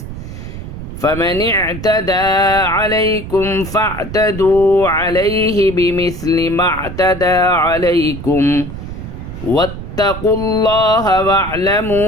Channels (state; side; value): noise; right; rumble, 10 dB below the sound